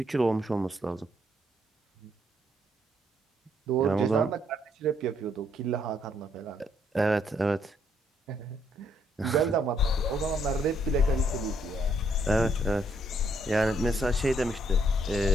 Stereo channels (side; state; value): both; normal; correlation 0.71